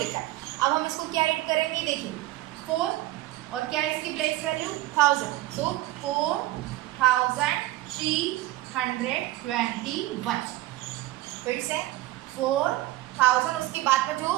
है. अब हम इसको क्या रीड करेंगे? देखिए 4 और क्या है इसकी प्लेस वैल्यू? 1000. सो 4321. फिर से 4000, उसके बाद में जो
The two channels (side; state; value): left; quieter; 16.6 dB